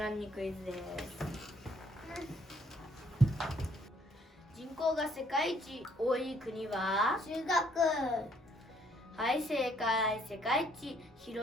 ンにクイズです。人口が世界一多い国は？中国。はい、正解。世界一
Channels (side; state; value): both; normal; correlation 0.65